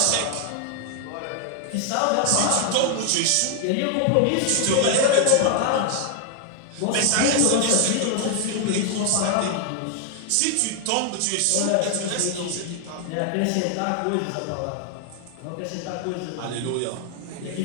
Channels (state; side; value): different; both; correlation 0.00